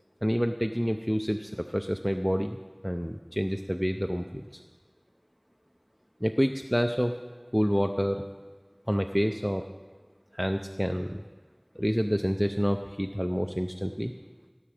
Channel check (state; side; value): identical; both; correlation 1.00